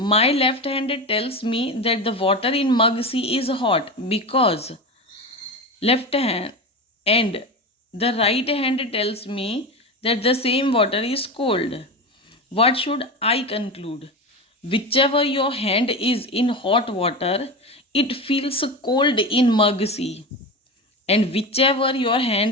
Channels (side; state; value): both; normal; correlation 0.24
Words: left hand tells me that the water in mug C is hot because left hand, and the right hand tells me that the same water is cold. What should I conclude? Whichever your hand is in hot water, it feels cold in mug C. And whichever your